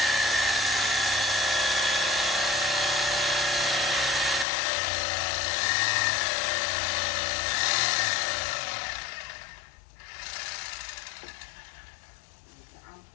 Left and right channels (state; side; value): drops out; right; at 4.5 s